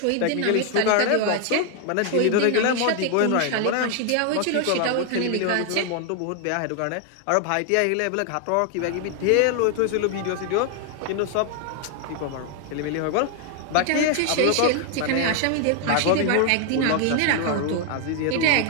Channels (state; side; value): different; both; correlation 0.00